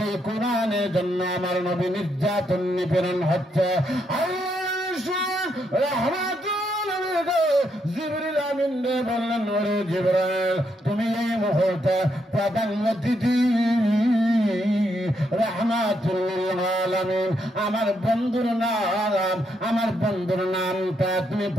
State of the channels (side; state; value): both; normal; correlation 0.78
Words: কোরআনের জন্য আমার নবী নির্যাতন নিপীড়ন হচ্ছে। জিবরিল আমিন বললেন, ওরে জিবরাইল, তুমি এই মুহূর্তে প্রধানমন্ত্রী রাহমাতুল লিল আলামিন আমার বন্ধুর নামটা তুমি